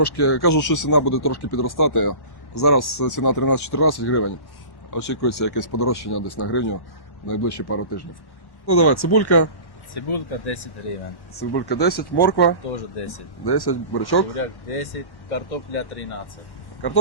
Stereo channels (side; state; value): right; late; 1.1 ms